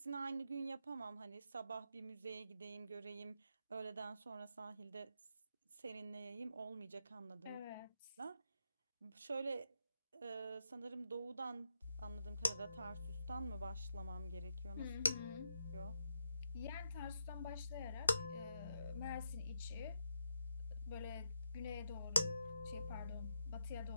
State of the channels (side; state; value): both; inverted; correlation -0.82